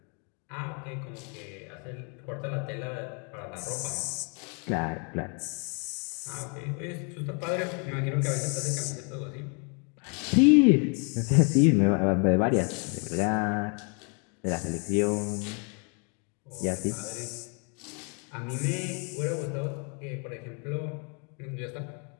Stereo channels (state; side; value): quieter; right; 36.6 dB